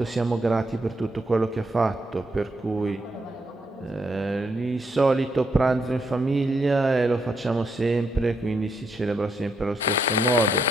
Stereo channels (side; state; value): both; normal; correlation 0.77